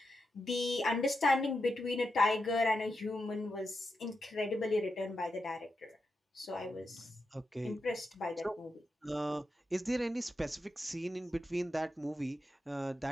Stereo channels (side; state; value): both; normal; correlation 0.87